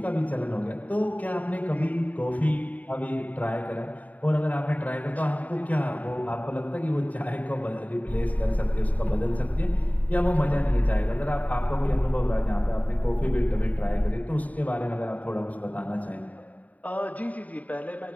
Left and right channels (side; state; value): right; late; 0.073 ms